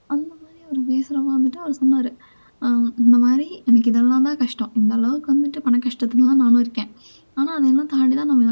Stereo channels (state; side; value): inverted; both; correlation -1.00